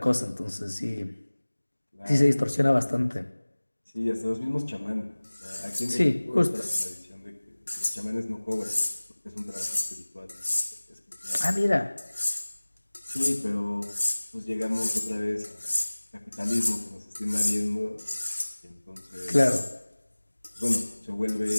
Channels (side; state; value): both; inverted; correlation -1.00